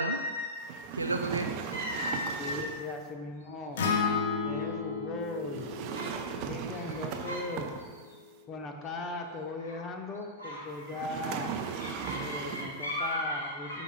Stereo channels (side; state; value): both; normal; correlation -0.17